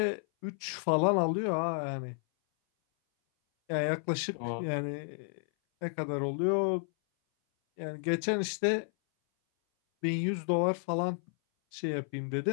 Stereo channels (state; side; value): silent; right; 57 dB below the other